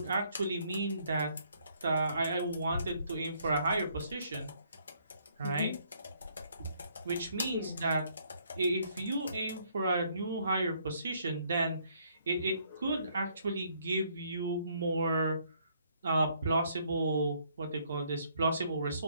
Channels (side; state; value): both; inverted; correlation -0.67